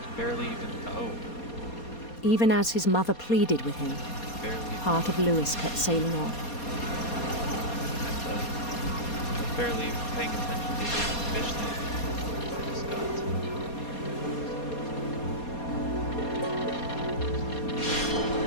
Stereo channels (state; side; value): late; right; 4.2 ms